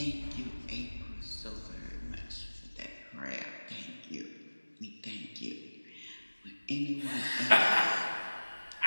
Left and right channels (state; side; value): inverted; both; correlation -1.00